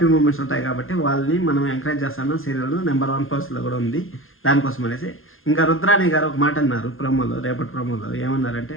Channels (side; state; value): right; late; 0.60 ms